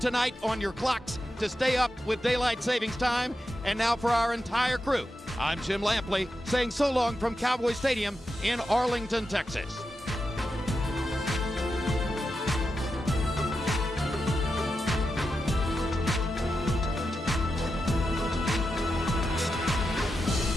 tonight on your clocks to stay up with daylight savings time. And now for our entire crew, I'm Jim Lampley saying so long from Cowboy Stadium in Arlington, Texas.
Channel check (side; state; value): both; normal; correlation 0.88